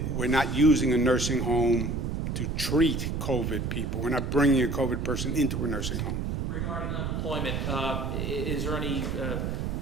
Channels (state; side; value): noise; right; rumble, 2 dB below the sound